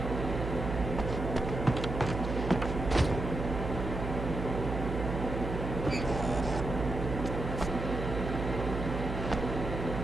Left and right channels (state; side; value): noise; right; hum, 4 dB below the sound